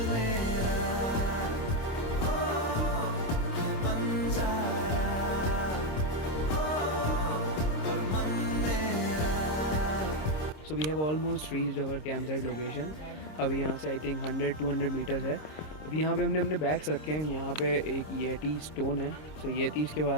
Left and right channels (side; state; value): right; late; 26 ms